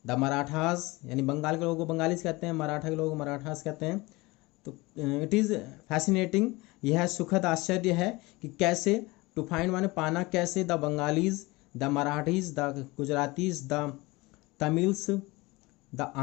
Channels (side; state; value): right; quieter; 22.6 dB